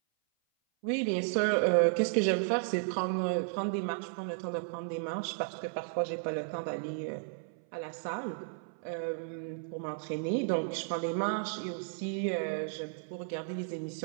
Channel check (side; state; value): left; silent; 55 dB below the other